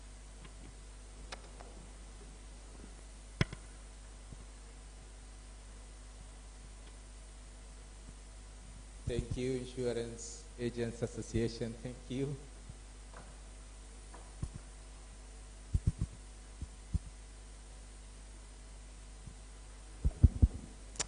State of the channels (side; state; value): both; identical; correlation 1.00